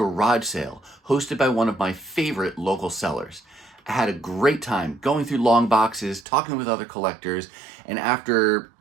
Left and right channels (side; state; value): left; drops out; at 6.2 s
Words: sale hosted by one of my favorite local sellers. I had a great time going through long boxes, talking with other collectors, and after